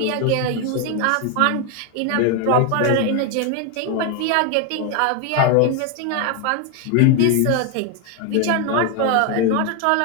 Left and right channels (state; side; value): different; both; correlation 0.01